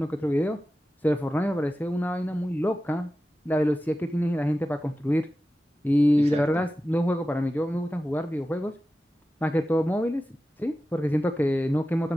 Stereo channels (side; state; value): both; normal; correlation 0.94